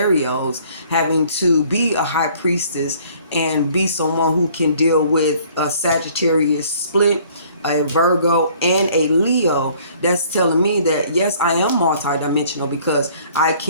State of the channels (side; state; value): both; inverted; correlation -0.57